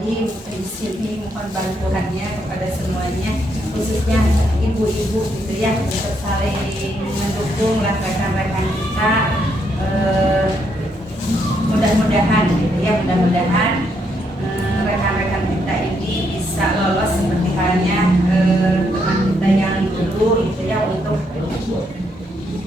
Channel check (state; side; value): normal; both; correlation 0.76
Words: di sini mohon bantuannya kepada semuanya, khususnya ibu-ibu gitu ya, untuk saling mendukung rekan-rekan kita. Mudah-mudahan gitu ya, mudah-mudahan rekan-rekan kita ini bisa lolos seperti halnya teman kita yang dulu gitu ya, untuk